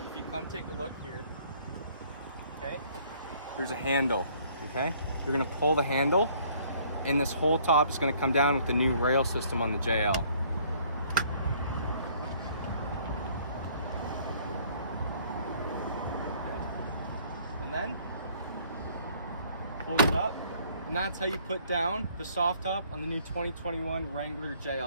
if you come take a look here, okay, there's a handle, okay? You're going to pull the handle, and this whole top is going to come down with the new rail system on the JL. Okay. And then hold it up, and that's how you put down the soft top on the new 2021 Wrangler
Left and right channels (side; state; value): both; inverted; correlation -0.60